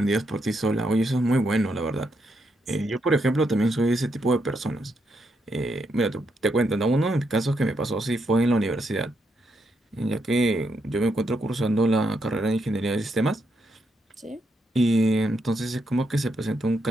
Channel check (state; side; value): normal; both; correlation 0.80